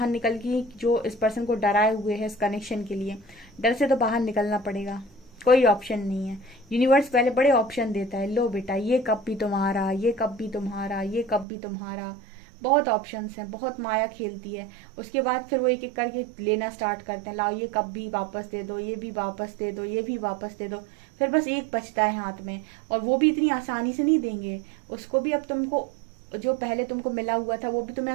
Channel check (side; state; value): left; drops out; at 11.5 s